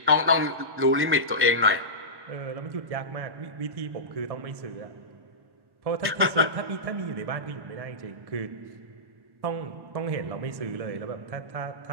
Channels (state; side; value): late; left; 1.1 ms